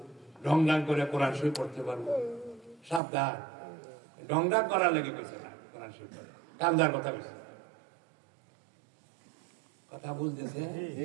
ঢং ঢাং করে কোরআন শরীফ পড়তে পারবো। সাবধান, ঢং ঢাং করার লেগে কইছে না, কোরআন শরীফ কান্দার কথা কইছে। কথা বুঝতেছে?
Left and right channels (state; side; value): drops out; left; at 3.0 s